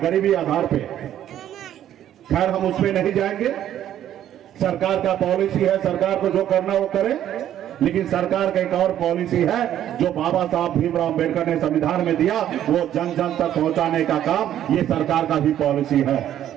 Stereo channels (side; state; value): left; quieter; 11.2 dB